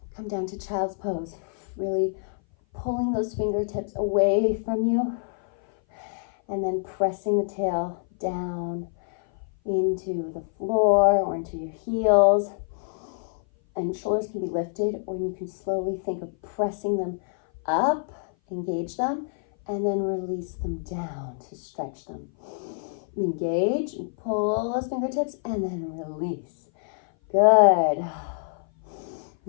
Come down to child's pose. Really pulling those fingertips away from you. And then pressing the tail down into the floor or into your heels. And shoulders can be lifted, or you can slowly think of pressing them up, engage them, and then release them down to stretch them. Engage and pull those fingertips and then release. Good.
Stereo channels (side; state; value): right; silent; 57 dB below the other